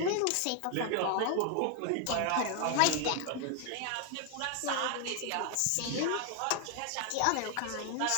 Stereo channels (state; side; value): different; both; correlation 0.00